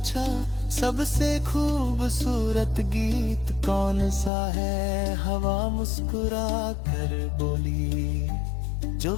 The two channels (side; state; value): right; drops out; at 4.3 s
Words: सबसे खूबसूरत गीत कौन सा है? हवा मुस्कुरा कर बोली, जो